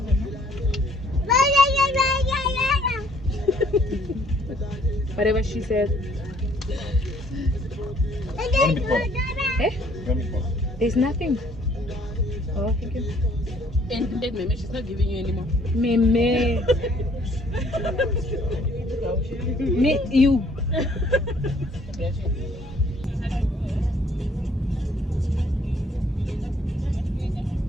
Whatever she said. Eh? There's nothing. Oh, thank you. ended, Meme. She's not giving you anymore. Meme. Me, you.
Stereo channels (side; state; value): both; normal; correlation 0.62